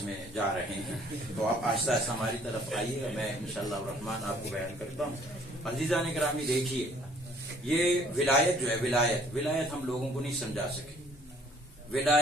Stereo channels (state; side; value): normal; both; correlation 0.58